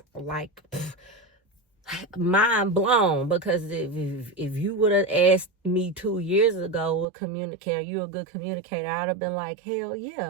like mind blown. Because if you would have asked me 2 years ago, are you a good communicator, I'd have been like, hell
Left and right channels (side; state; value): left; drops out; at 7.1 s